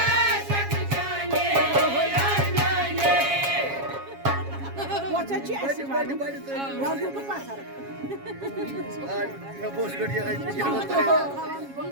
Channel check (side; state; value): left; late; 7.3 ms